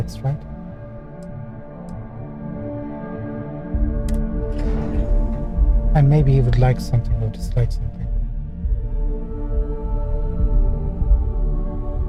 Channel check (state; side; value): identical; both; correlation 1.00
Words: right? And maybe he would like something of dislike something.